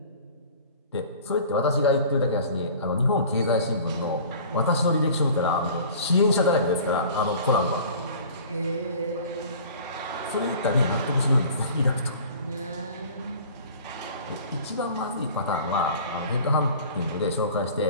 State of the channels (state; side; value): inverted; both; correlation -0.44